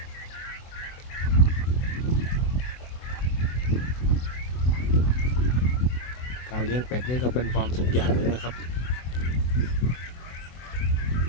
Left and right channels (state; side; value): late; right; 24 ms